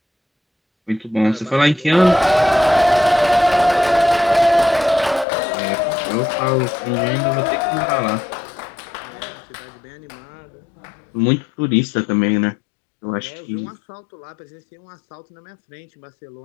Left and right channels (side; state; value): right; drops out; at 5.2 s